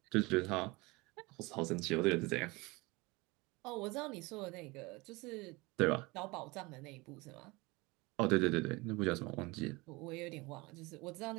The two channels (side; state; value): left; quieter; 24.1 dB